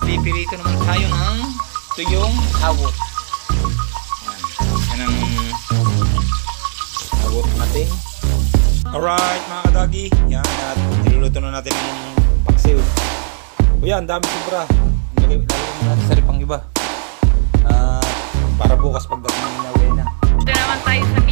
naman tayo ng tuyong hawot. Yan ang hawot natin. Alright mga kadagi, yan, at niluluto na natin ng paksiw. O yan, dami sobra. Lagay natin sa pang iba. Para bukas pagdating na Wena. Ito naman tayo sa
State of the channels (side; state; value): left; silent; digital silence